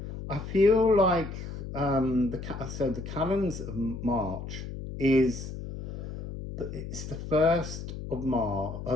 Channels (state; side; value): noise; left; hum, 8 dB below the sound